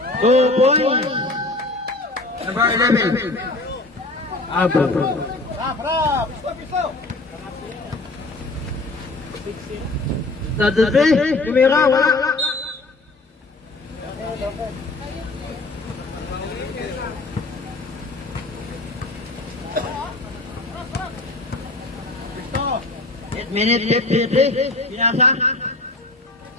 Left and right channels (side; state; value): right; quieter; 3.0 dB